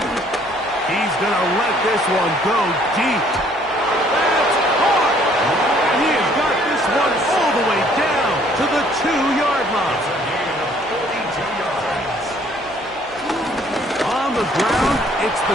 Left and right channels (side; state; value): right; noise; hum, 26 dB below the sound